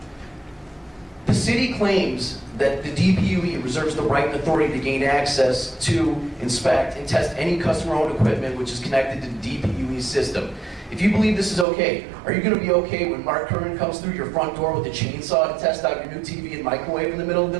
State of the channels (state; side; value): drops out; left; at 11.7 s